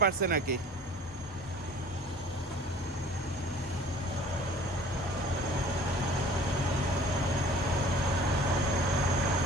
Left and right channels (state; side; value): normal; both; correlation 0.48